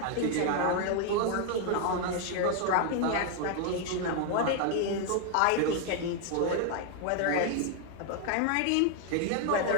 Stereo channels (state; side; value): different; both; correlation 0.01